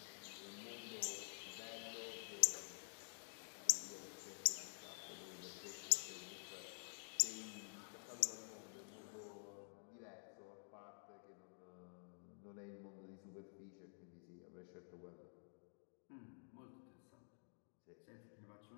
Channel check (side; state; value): right; silent; digital silence